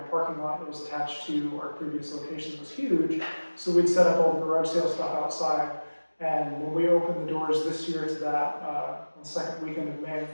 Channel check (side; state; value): both; inverted; correlation -1.00